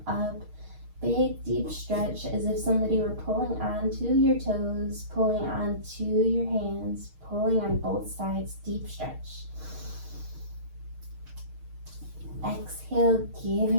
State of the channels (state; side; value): late; left; 6.5 ms